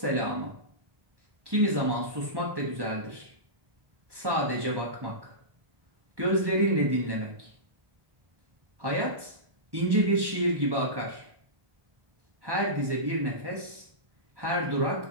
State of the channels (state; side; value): late; left; 1.1 ms